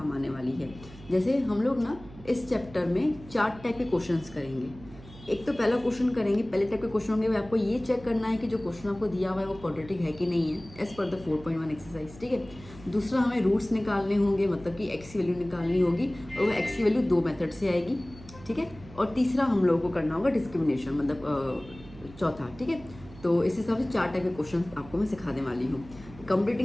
आने वाली है। जैसे हम लोग ना इस चैप्टर में 4 टाइप के क्वेश्चंस करेंगे। एक तो पहला क्वेश्चन करेंगे, पहले टाइप के क्वेश्चन होंगे, आपको ये चेक करना है कि जो क्वेश्चन आपको दिया हुआ है वो क्वाड्रेटिक है कि नहीं है, एज पर द 4.1 एक्सरसाइज, ठीक है। दूसरा हमें रूट्स निकालने होंगे, मतलब कि एक्स की वैल्यू निकालनी होगी और वो एक्स की वैल्यू 2 मेथड से आएगी, ठीक है। और तीसरा हम लोगों को करना होगा डिस्क्रिमिनेशन, मतलब चौथा, ठीक है। तो इस हिसाब से 4 टाइप के क्वेश्चन आपको मैं सिखाने वाली हूँ।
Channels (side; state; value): right; noise; hum, 19 dB below the sound